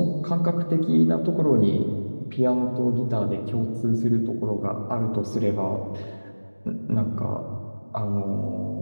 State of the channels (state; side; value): inverted; both; correlation -1.00